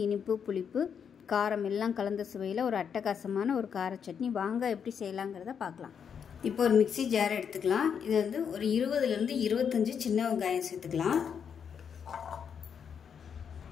இனிப்பு, புளிப்பு, காரம் எல்லாம் கலந்த சுவையில் ஒரு அட்டகாசமான ஒரு கார சட்னி. வாங்க எப்படி செய்யலாங்கிறத பார்க்கலாம். இப்போ ஒரு மிக்சி ஜார் எடுத்துக்கலாம். இது வந்து ஒரு 20லேருந்து 25 சின்ன வெங்காயம் சேர்த்துக்கலாம்.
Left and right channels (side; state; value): right; quieter; 7.3 dB